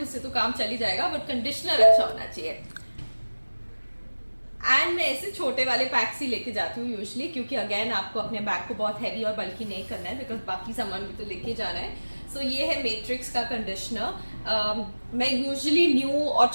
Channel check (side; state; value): both; inverted; correlation -1.00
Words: से तो काम चल ही जाएगा बट कंडीशनर अच्छा होना चाहिए. एंड मैं ऐसे छोटे वाले पैक्स ही लेके जाती हूँ यूजली, क्योंकि अगेन आपको अपने बैग को बहुत हैवी और बल्कि नहीं करना है बिकॉज बाकी सामान भी तो लेके जाना है. सो ये है मैट्रिक्स का कंडीशनर. मैं यूजली न्यू और